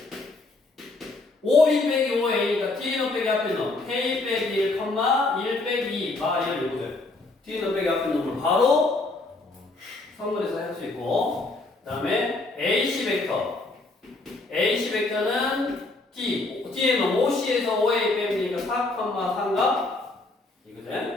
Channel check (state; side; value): quieter; right; 3.2 dB